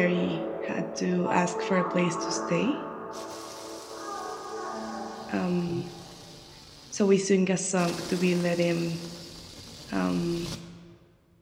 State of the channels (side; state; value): both; identical; correlation 1.00